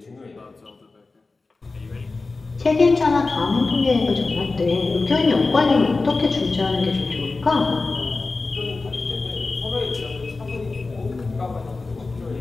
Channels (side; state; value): right; quieter; 3.7 dB